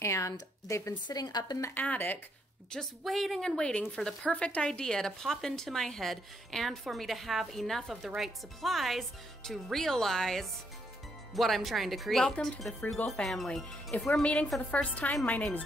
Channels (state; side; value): normal; both; correlation 0.76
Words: they've been sitting up in the attic just waiting and waiting for the perfect idea to pop into my head and for me to have enough of the right supplies to realize what I'm trying to create. Welcome to the Frugal family. If we're meeting for the first time, my name is